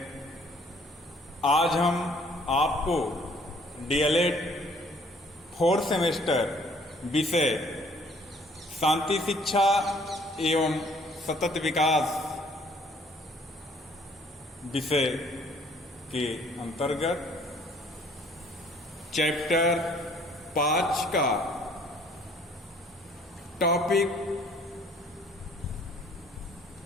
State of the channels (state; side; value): normal; both; correlation 0.59